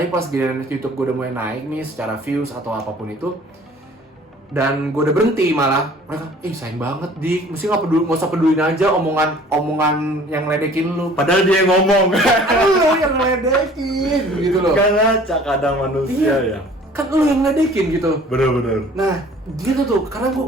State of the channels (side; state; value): both; normal; correlation 0.51